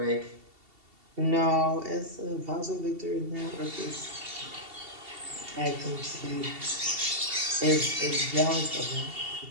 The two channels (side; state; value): left; late; 2.7 ms